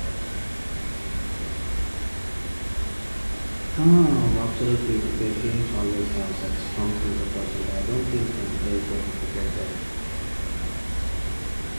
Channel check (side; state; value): both; inverted; correlation -1.00